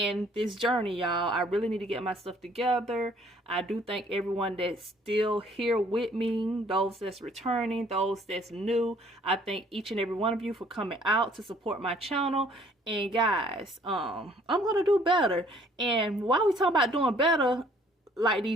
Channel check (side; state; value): both; normal; correlation 0.60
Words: this journey, y'all. I really need to get my stuff together. I do thank everyone that's still here with me, those that's returning, those that's new. I thank each and every one of you for coming out to support my channel. And guys, I'm gonna do better. And while we talking about doing better, like